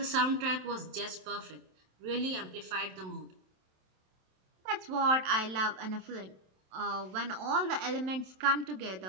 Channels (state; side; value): late; left; 27 ms